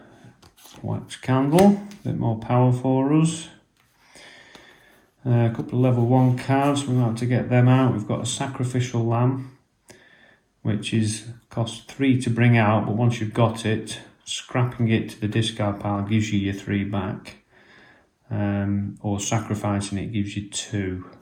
wax candle, a bit more power for us. A couple of level 1 cards, we're going to have to get them out. We've got a Sacrificial Lamb, which is cost 3 to bring out, but once you've got it, scrapping it to the discard pile gives you your 3 back, or sacrificing it gives you 2.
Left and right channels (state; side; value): identical; both; correlation 1.00